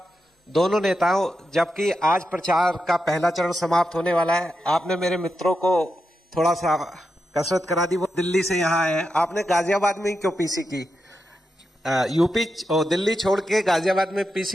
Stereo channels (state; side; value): normal; both; correlation 0.87